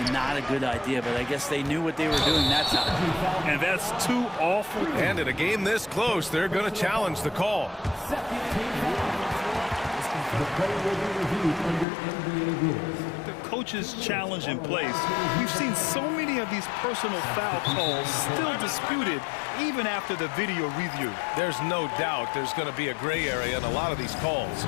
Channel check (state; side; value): drops out; right; at 11.9 s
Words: not a good idea, but I guess they knew what they were doing that time. And that's too awful. And in a game this close, they're going to challenge the call. The play will be reviewed under NBA rules. The coach's challenge in place. We've seen so many many of these personal foul calls still disputed even after the video review? There's no doubt there's going to be a gray area in a lot of these calls.